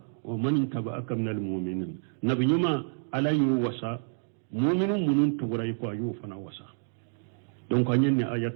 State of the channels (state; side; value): silent; left; digital silence